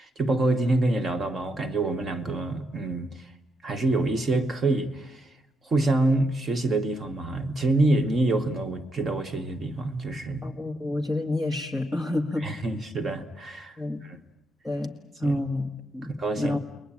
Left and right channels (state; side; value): normal; both; correlation 0.80